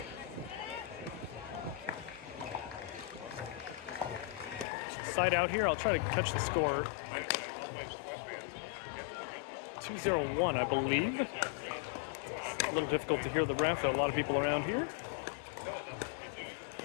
Side out here, I'll try to catch the score. 2-0-1, I believe. A little difficult to hear the ref, a lot of people around here.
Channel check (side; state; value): right; drops out; at 4.7 s